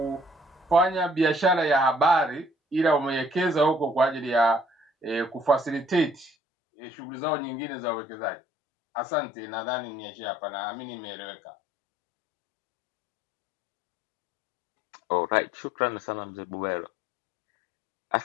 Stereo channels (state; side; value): drops out; right; at 6.3 s